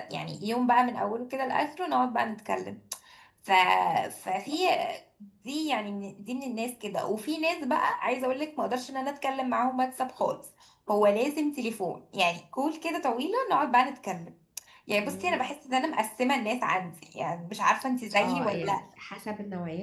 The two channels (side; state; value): both; identical; correlation 1.00